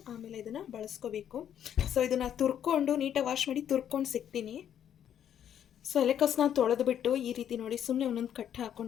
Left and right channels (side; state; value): right; quieter; 9.7 dB